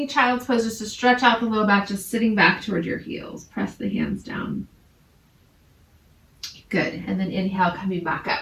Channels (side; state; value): both; identical; correlation 1.00